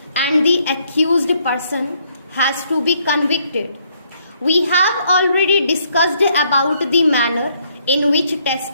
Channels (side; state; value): both; inverted; correlation -0.69